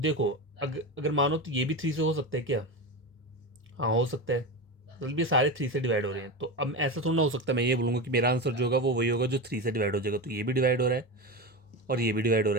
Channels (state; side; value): normal; both; correlation 0.21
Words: अगर मानो तो ये भी 3 से हो सकता है क्या? हाँ, हो सकता है। मतलब ये सारे 3 से डिवाइड हो रहे हैं, तो अब ऐसा थोड़ा ना हो सकता मैं ये बोलूँगा कि मेरा आंसर जो होगा वो वही होगा जो 3 से डिवाइड हो जाएगा। तो ये भी डिवाइड हो रहा है और ये भी डिवाइड हो